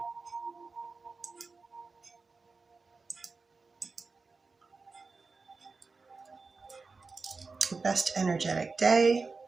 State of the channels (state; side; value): quieter; left; 4.2 dB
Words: Best energetic day.